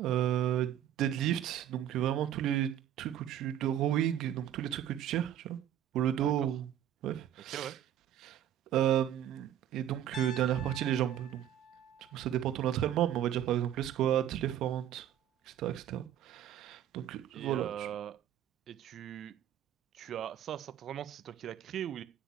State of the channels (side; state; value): left; quieter; 11.0 dB